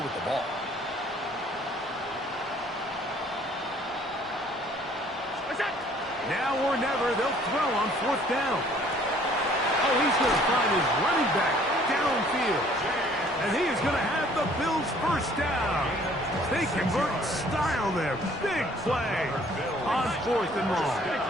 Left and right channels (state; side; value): normal; both; correlation 0.57